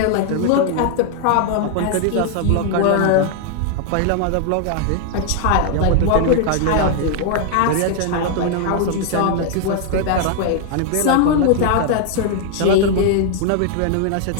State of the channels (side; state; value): both; different; correlation 0.00